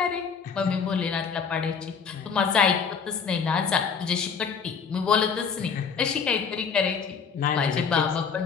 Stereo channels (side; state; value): right; quieter; 6.1 dB